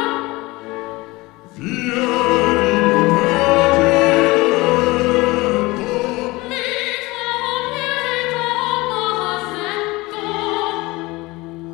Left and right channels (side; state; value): right; quieter; 21.8 dB